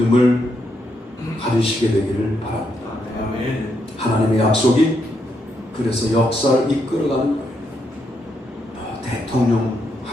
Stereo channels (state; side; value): normal; both; correlation 0.79